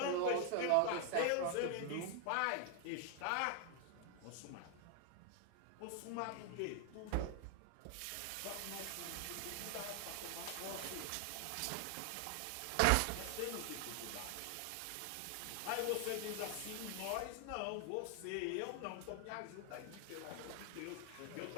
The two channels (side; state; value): both; different; correlation 0.00